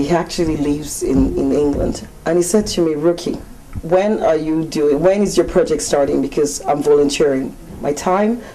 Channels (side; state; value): both; identical; correlation 1.00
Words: He actually lives in England, and he said to me, Ruki, when is your project starting? Because I'm volunteering my time,